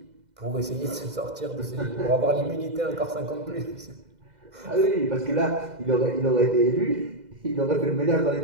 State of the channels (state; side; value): late; left; 2.0 ms